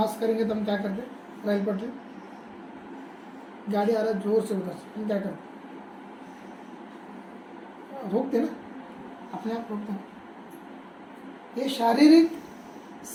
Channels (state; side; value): identical; both; correlation 1.00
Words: करेंगे तो हम क्या करते? रेल पटरी, गाड़ी आ रहा है जोर से उधर से, हम क्या करते? रोकते ना, अपने आप रोकते हैं। ये शारीरिक